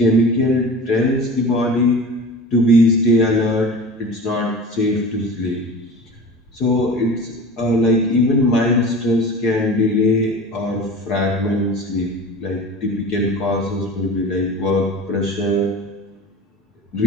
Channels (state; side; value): normal; both; correlation 0.36